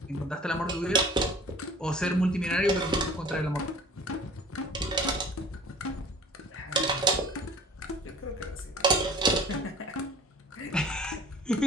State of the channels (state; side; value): normal; both; correlation 0.47